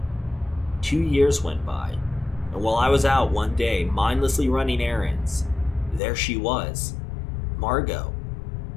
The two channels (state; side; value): drops out; right; at 6.0 s